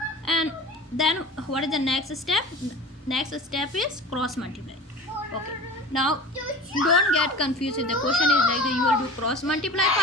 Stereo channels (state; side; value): normal; both; correlation 0.37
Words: and then what is the next step? Next step is cross multiply. Okay, now don't get confused. If the question is like you will do cross multiply